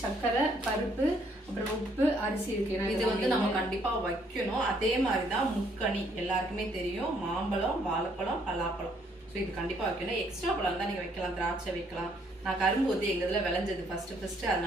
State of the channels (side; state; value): both; normal; correlation 0.67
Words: சர்க்கரை, பருப்பு, அப்புறம் உப்பு, அரிசி இருக்குது. இது வந்து நம்ம கண்டிப்பாக வைக்கணும். அதே மாதிரி தான் முக்கணி எல்லாருக்குமே தெரியும். மாம்பழம், வாழைப்பழம், பலாப்பழம். ஸோ இது கண்டிப்பாக வைக்கணும். எக்ஸ்ட்ரா பழம் தான் நீங்கள் வைக்கலாம், திராட்சை வைக்கலாம். நான் கரும்பு வந்து எங்கள் இதில் விளைஞ்சது ஃபஸ்ட்டு,